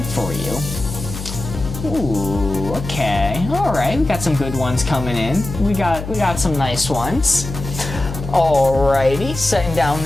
for you. Ooh, okay. Alright, we got some good ones coming in. We got some nice ones. Alrighty, setting down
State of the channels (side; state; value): left; noise; hum, 8 dB below the sound